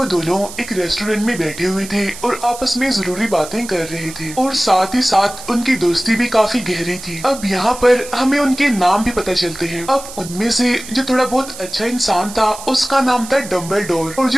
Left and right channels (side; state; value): right; noise; hiss, 13 dB below the sound